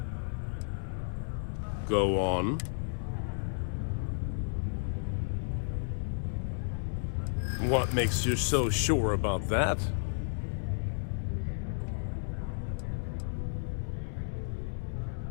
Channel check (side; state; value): right; silent; 56 dB below the other